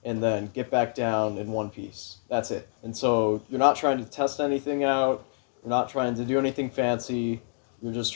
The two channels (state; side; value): silent; right; digital silence